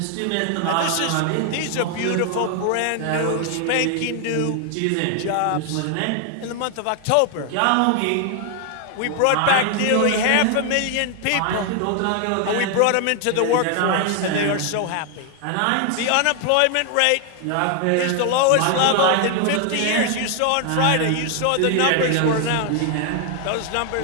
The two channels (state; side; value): different; both; correlation 0.00